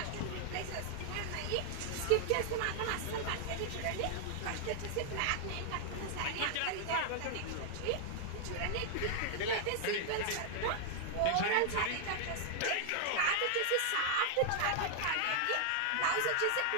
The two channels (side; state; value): both; different; correlation 0.00